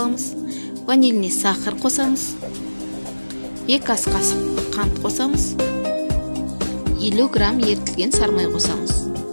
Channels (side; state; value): both; inverted; correlation -1.00